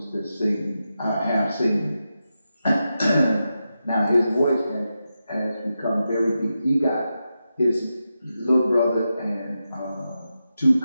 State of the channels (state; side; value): inverted; both; correlation -0.89